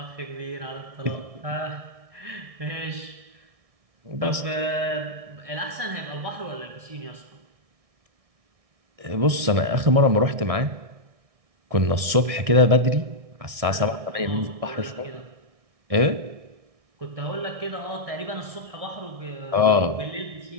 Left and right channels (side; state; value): left; late; 1.6 ms